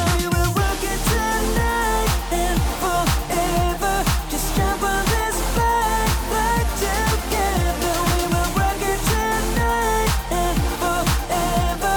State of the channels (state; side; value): identical; both; correlation 1.00